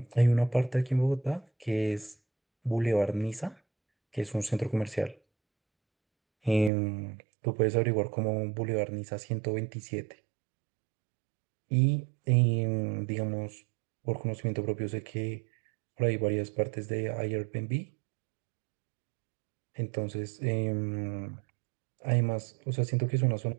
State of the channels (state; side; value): drops out; left; at 6.7 s